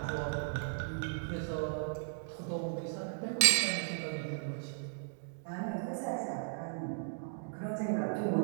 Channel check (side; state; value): left; silent; digital silence